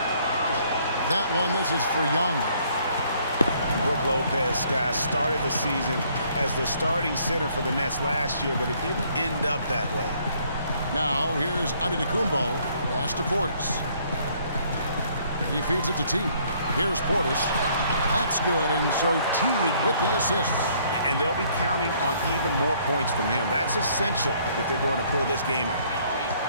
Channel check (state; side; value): inverted; both; correlation -0.64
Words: That one, this is for Young. Brook Lopez, guys, started the season as the starting center for the Nets last year, but it didn't end up that way. Now, here's Antetokounmpo. Pass to Portis. He feeds it to Teague. Here's Portis. That's good, and so Teague with the assist. And they'll be counting on even more points from him. That's essential if they're going to pull this game out.